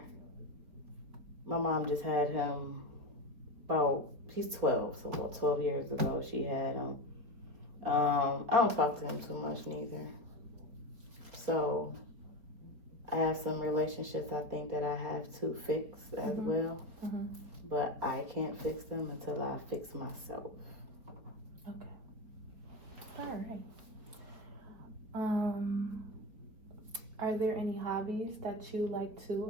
My mom just had him he's 12, so about 12 years ago she had him. I don't talk to him too much neither. So I have some relationships I think that I have to fix as well. But I can't fix them until I fix myself. Okay. All right. Are there any hobbies that you like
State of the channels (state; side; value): late; left; 4.4 ms